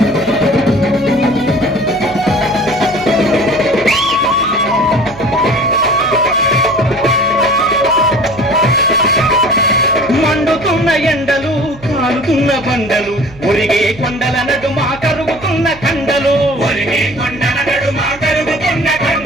మండుతున్న ఎండలు కాలుతున్న బండలు ఒరిగే కొండల నడుమ కరుగుతున్న కండలు ఒరిగే కొండల నడుమ కరుగుతున్న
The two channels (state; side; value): noise; right; hum, 20 dB below the sound